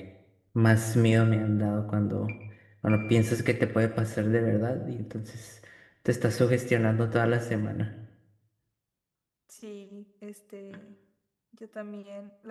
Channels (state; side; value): identical; both; correlation 1.00